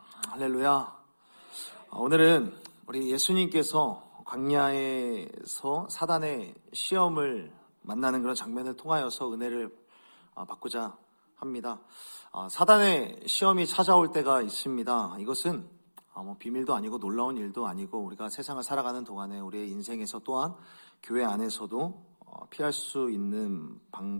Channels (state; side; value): inverted; both; correlation -1.00